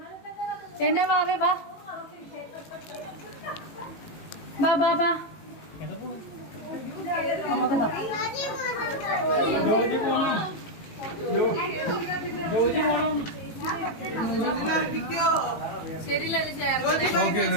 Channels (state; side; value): late; right; 18 ms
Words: എന്നാ വാവേ, വാ ബാ ബാ ബാ. അമ്മക്ക് താ.